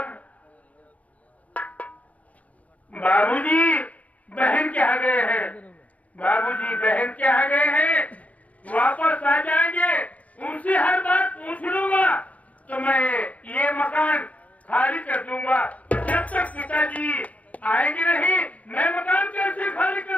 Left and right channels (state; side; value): late; right; 0.069 ms